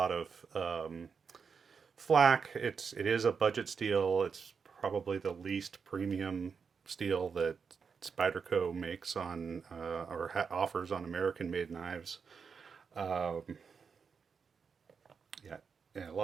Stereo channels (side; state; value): left; quieter; 5.9 dB